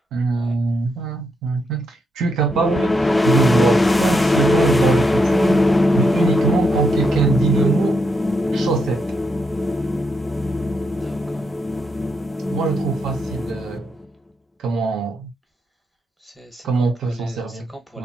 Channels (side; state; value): both; normal; correlation 0.80